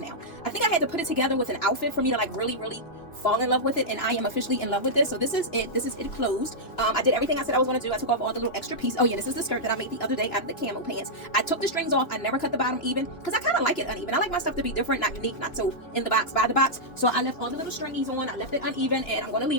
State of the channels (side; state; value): right; late; 2.9 ms